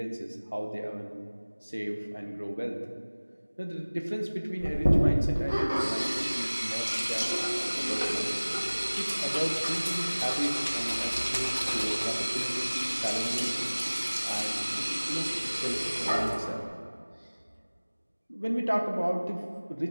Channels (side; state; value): both; inverted; correlation -1.00